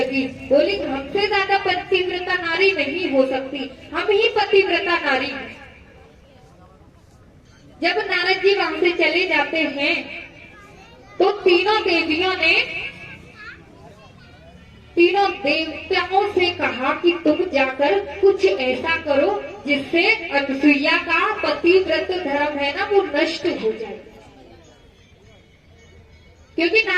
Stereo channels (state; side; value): identical; both; correlation 1.00